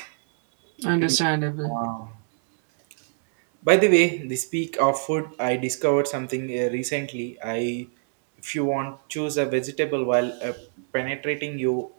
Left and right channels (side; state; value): left; silent; 62 dB below the other